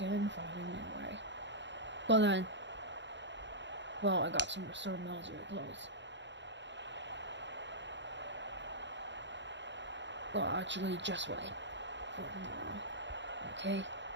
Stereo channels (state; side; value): late; left; 0.52 ms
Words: invited anyway. But then, well, I got some restored military clothes. Well, actually, just wait for tomorrow. Okay?